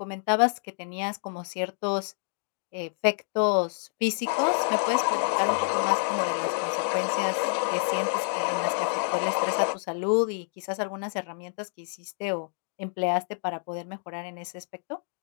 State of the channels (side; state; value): right; silent; 59 dB below the other